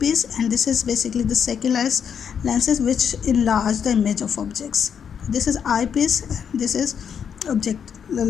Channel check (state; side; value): quieter; right; 7.6 dB